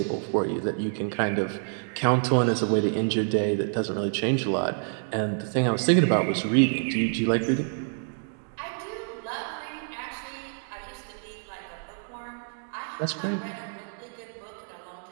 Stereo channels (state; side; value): silent; left; 60 dB below the other